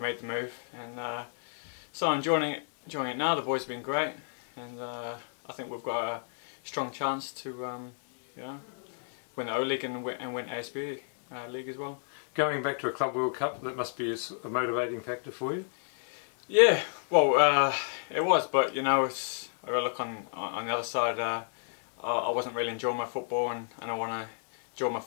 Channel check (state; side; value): silent; right; digital silence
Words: the move, and so I'm enjoying it now. The boys have been great, and I think we've got a strong chance to you know, win the O-League and win ASB League as well. Going back to a Club World Cup, that must be a motivating factor for you? Yeah, well, it was, but you know, I got to look on the other side. I wasn't really enjoying my football, and I want to enjoy my